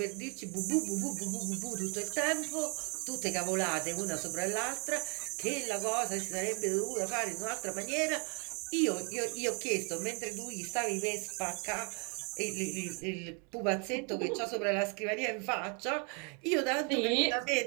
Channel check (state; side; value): quieter; left; 36.2 dB